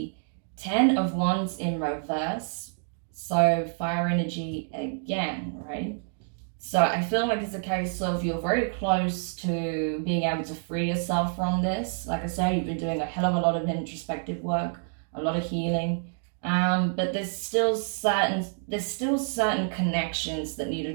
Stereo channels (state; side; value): silent; left; 59 dB below the other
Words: 10 of Wands in reverse. So fire energy again, right? So I feel like it's a case of you're very close to being able to free yourself from this. Like I said, you've been doing a hell of a lot of introspective work, a lot of healing. But there's still certain connections that need